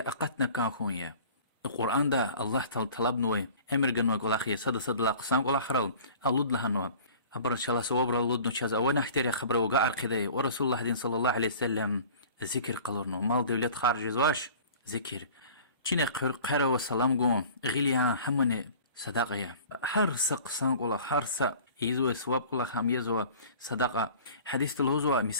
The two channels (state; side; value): inverted; both; correlation -0.44